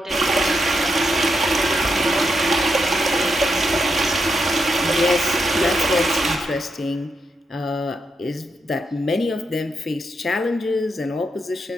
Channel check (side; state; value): both; normal; correlation 0.83